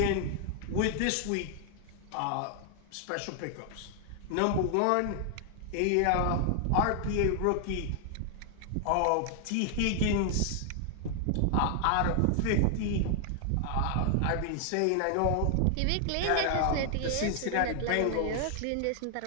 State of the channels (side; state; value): both; different; correlation 0.00